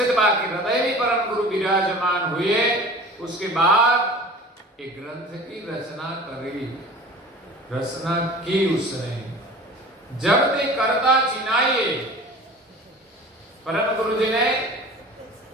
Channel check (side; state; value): both; normal; correlation 0.41